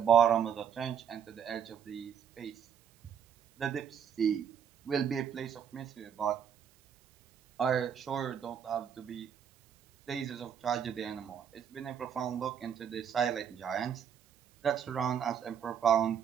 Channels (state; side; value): quieter; left; 8.2 dB